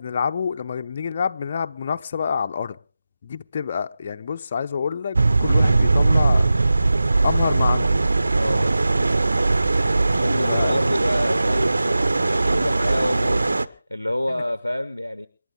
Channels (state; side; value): inverted; both; correlation -0.93